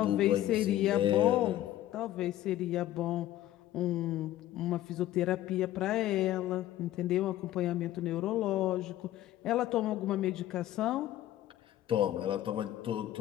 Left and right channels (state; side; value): quieter; right; 13.7 dB